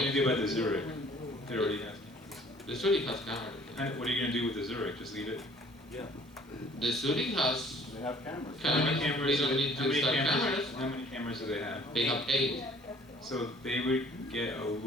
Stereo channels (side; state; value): both; normal; correlation 0.55